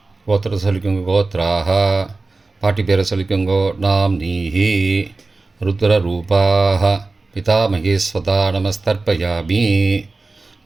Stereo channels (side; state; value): left; quieter; 3.5 dB